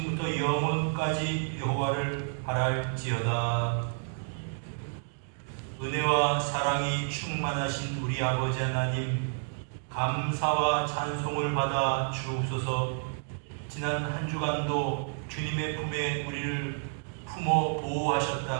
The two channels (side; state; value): left; silent; 58 dB below the other